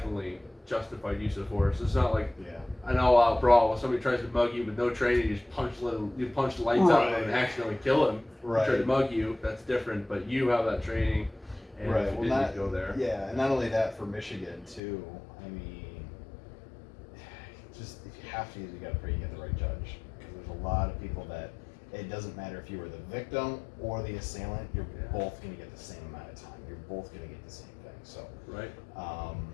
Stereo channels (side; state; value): right; drops out; at 14.8 s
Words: justified use of force. It's not like an all-out brawl where somebody tries to mug you with no training, you just punch the lights out of them and accidentally kill him. Right. Try to mug you, that's different. But you have that training, and right. if you Well, didn't go there. Yeah, and not only that, for Michigan too. I mean, just if you have to use, you got to pray you get the right judge, because there's a lot of people that it doesn't matter if you were the victim or the assailant, you're both going to get the same amount of time. You're both going to get the same thing. So, right.